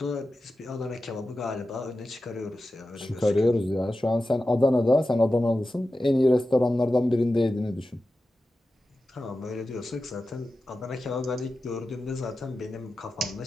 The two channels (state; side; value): normal; both; correlation 0.93